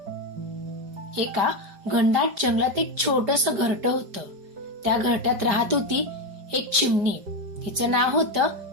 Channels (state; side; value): late; left; 5.0 ms